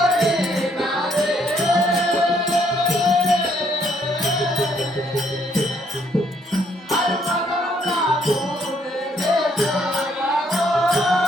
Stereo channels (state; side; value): normal; both; correlation 0.69